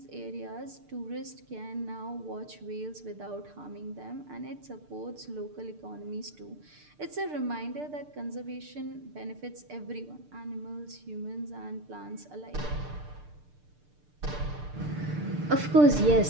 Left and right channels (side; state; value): left; late; 6.7 ms